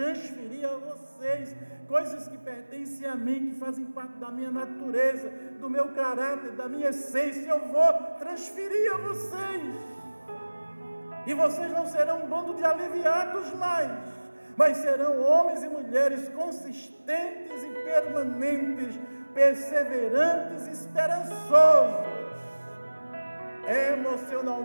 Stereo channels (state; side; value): inverted; both; correlation -1.00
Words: a vocês coisas que pertencem a mim, que fazem parte da minha natureza, do meu caráter, da minha essência. Eu vou transferir a vocês, e vocês não serão um bando de aliviados mais, mas serão homens e mulheres consistentes e permanentes, perseverantes e esperançosos,